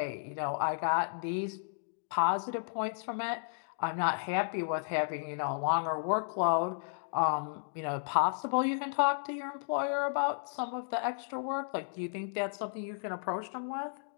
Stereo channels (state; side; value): silent; right; digital silence